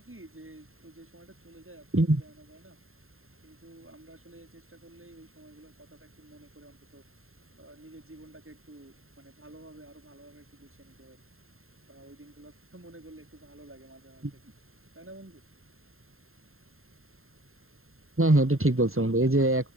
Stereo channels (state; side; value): late; left; 0.61 ms